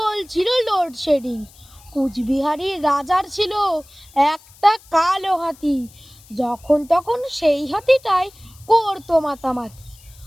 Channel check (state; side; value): noise; left; hiss, 25 dB below the sound